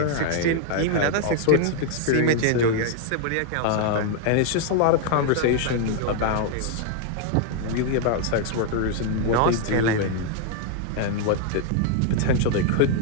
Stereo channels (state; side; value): different; both; correlation 0.00